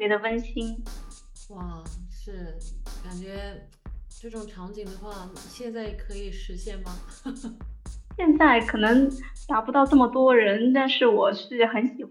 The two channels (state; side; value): identical; both; correlation 1.00